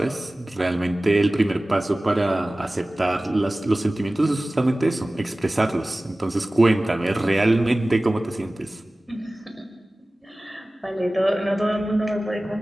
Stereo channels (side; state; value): both; normal; correlation 0.98